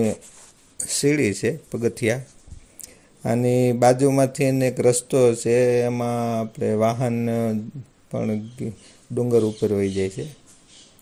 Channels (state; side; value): identical; both; correlation 1.00